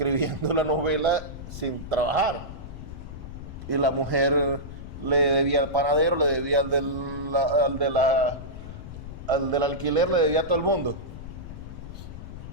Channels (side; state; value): left; noise; rumble, 11 dB below the sound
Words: la novela sin trabajar. Y la mujer le debía al panadero, le debía al del alquiler, le debía a todo el mundo.